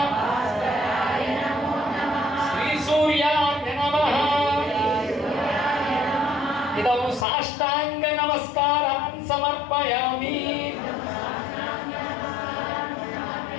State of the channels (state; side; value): drops out; right; at 7.2 s